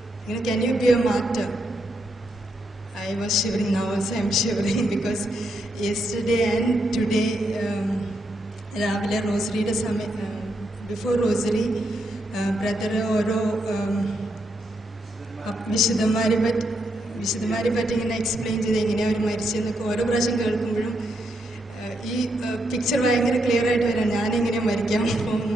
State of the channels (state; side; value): normal; both; correlation 0.80